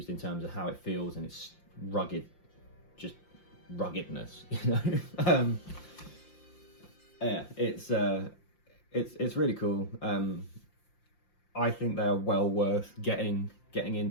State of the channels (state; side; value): late; right; 5.8 ms